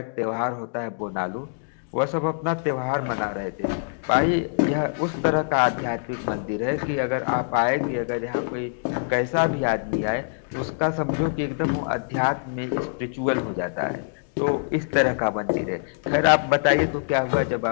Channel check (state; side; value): silent; right; digital silence